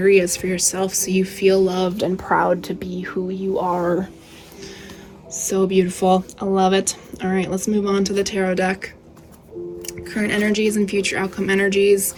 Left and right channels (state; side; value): identical; both; correlation 1.00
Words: for yourself so you feel loved and proud to be who you are. So beautiful. I love it. All right, let's move on to the tarot deck. Current energies and future outcome energies.